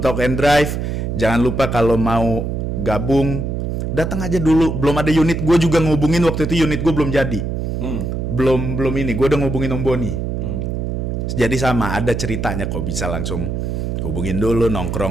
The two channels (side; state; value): right; noise; hum, 2 dB below the sound